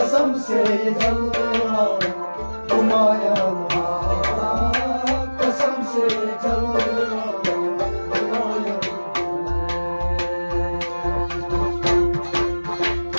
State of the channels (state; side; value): inverted; both; correlation -1.00